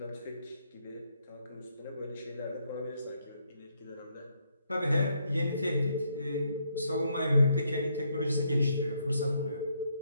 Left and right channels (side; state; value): both; inverted; correlation -0.74